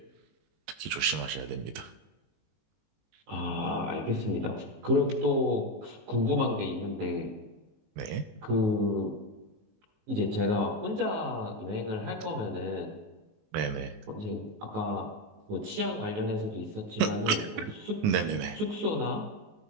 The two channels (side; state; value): left; late; 19 ms